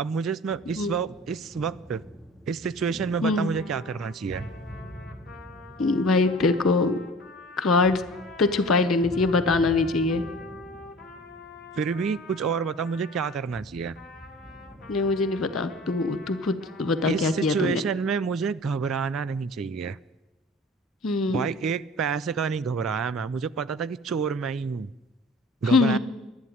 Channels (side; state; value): both; normal; correlation 0.43